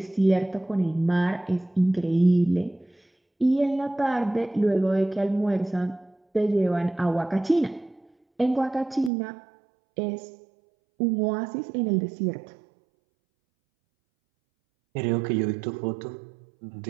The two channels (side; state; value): left; drops out; at 9.1 s